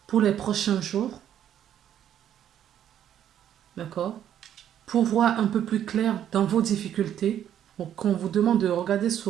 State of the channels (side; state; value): left; quieter; 10.3 dB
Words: pour les prochains jours. D'accord? Pour voir un peu plus clair dans vos difficultés, qu'on vous demande de regarder